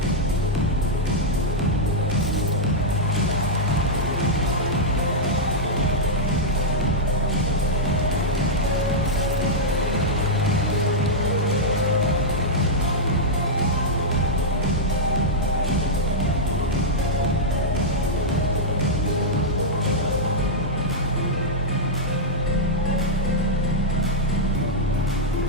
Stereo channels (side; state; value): both; normal; correlation -0.06